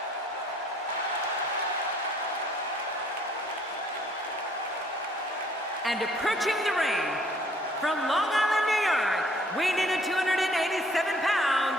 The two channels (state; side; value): normal; both; correlation 0.60